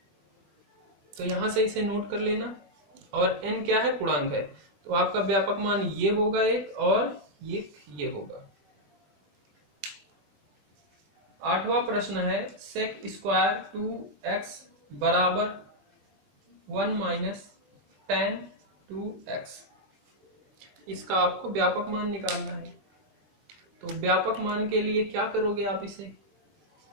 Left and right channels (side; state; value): left; late; 20 ms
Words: तो यहां से इसे नोट कर लेना। और n क्या है? पूर्णांक है। तो आपका व्यापक मान ये होगा एक, और ये होगा। 8वां प्रश्न है sec² 2x बराबर 1 - tan 2x। इसका आपको व्यापक मान निकालना है। तो व्यापक मान के लिए क्या करोगे आप? इसे